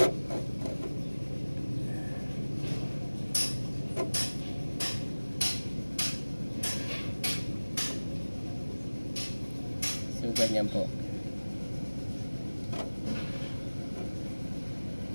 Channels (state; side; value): inverted; both; correlation -1.00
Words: So ganyan po.